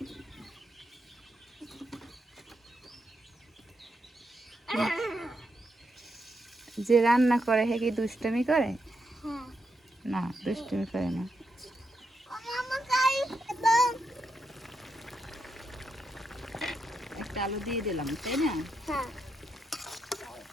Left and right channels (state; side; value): normal; both; correlation 0.83